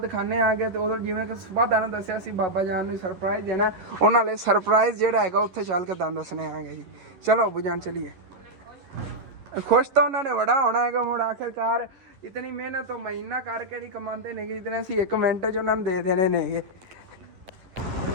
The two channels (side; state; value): left; late; 11 ms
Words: ਆਗੇ। ਤੇ ਉਦੋਂ ਜਿਵੇਂ ਕਿ ਸੁਬਾਹ ਦਾਣਾ ਦੱਸਿਆ ਸੀ ਬਾਬਾ ਜਾਨ ਨੂੰ ਸਰਪ੍ਰਾਈਜ਼ ਦੇਣਾ, ਉਹਨਾਂ ਲਈ ਸਰਪ੍ਰਾਈਜ਼ ਜਿਹੜਾ ਹੈਗਾ ਉੱਥੇ ਚੱਲ ਕੇ ਦਾਣ ਦੱਸਣੇ ਆਗੇ ਜੀ। ਚਲੋ ਅੱਬੂ ਜਾਨ ਚਲੀਏ। खुश तो उन्होंने बड़ा होना है कि मुड़ आखिरकार इतनी मेहनत तो महीना करके नहीं कमाते ने, इतने असी 1 मिनट च उन्होंने दे देने ने।